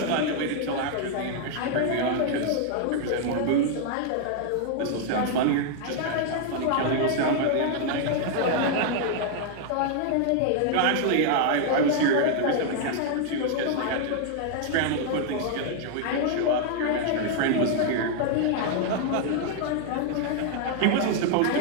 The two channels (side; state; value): both; different; correlation 0.00